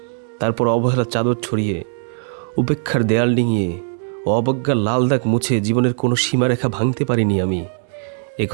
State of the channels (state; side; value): silent; left; 63 dB below the other